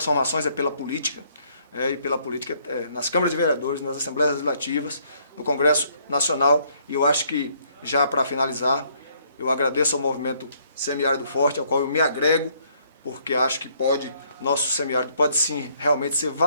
pela política, e pela política nas câmaras de vereadores, nas Assembleias Legislativas, no Congresso Nacional. E eu acho que, já para finalizar, eu agradeço ao movimento Semiárido Forte, ao qual eu me agrego, porque acho que nosso semiárido pode sim realmente ser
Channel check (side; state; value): both; inverted; correlation -0.67